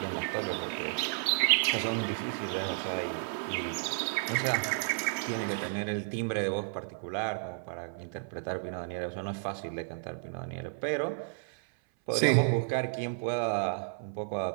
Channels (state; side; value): silent; left; 56 dB below the other